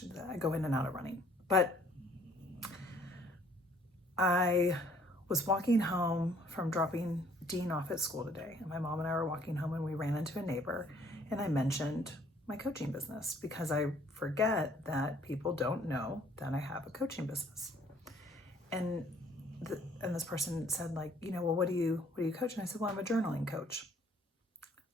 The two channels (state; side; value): normal; both; correlation 0.60